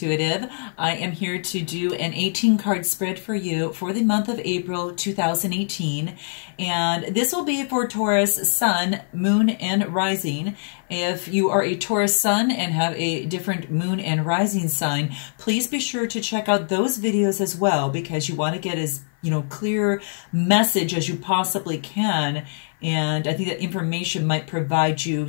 I am here to do an 18 card spread for you for the month of April 2018. And this will be for Taurus Sun, Moon, and Rising. If you are a Taurus Sun and have a different Moon and Rising sign, please be sure to check out those videos as well, because you want to get as clear message as you possibly can. And I think that information might provide you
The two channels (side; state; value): right; silent; 56 dB below the other